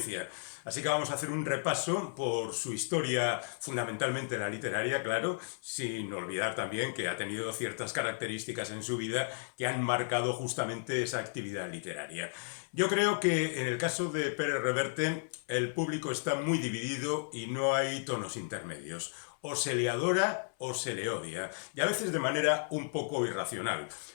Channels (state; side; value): silent; right; 55 dB below the other